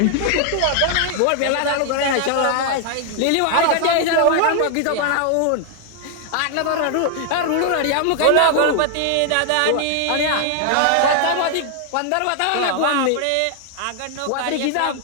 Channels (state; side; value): different; both; correlation 0.00